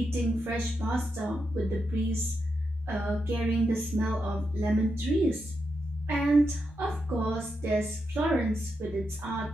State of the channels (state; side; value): normal; both; correlation 0.85